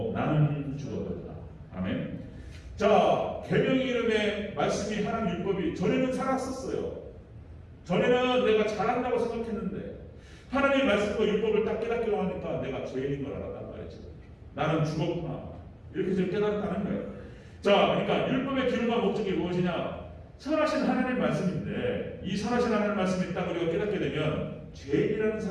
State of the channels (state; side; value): identical; both; correlation 1.00